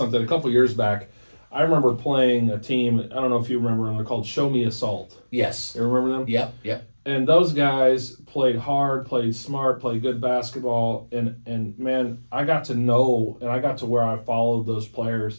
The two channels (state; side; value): inverted; both; correlation -1.00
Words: A couple years back, I remember playing a team. I don't know if you remember them. They're called Show Me Assault. Yes. You remember them? Yep. And those guys played hard, played smart, played good basketball, and man, I got to know, and I got to where I followed those